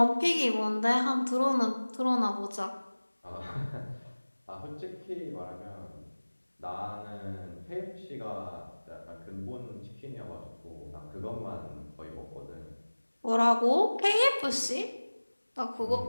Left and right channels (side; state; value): both; inverted; correlation -1.00